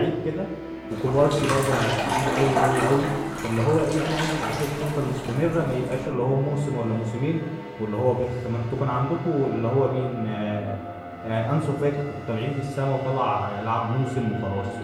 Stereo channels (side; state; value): both; identical; correlation 1.00